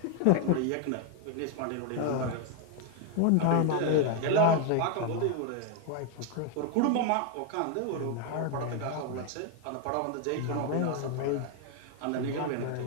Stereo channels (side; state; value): both; different; correlation 0.00